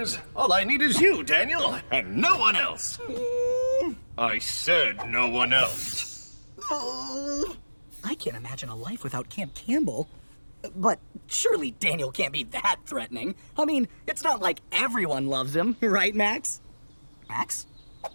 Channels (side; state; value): both; inverted; correlation -1.00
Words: All I need is you, Daniel, and no one else. I said no one else. I can't imagine a life without Camp Campbell. But surely Daniel can't be that threatening. I mean, it's not like everyone loves him, right, Max? Max?